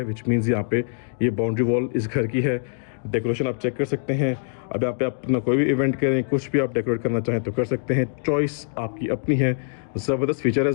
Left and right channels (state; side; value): silent; right; digital silence